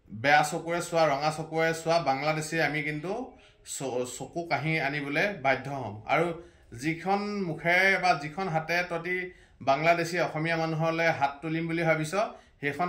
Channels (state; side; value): identical; both; correlation 1.00